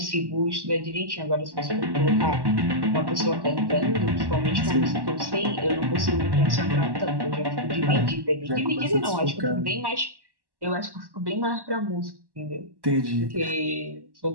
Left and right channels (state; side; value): late; left; 1.1 ms